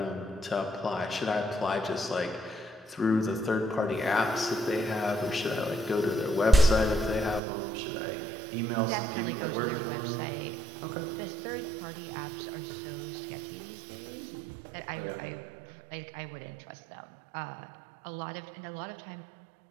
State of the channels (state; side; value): drops out; left; at 7.4 s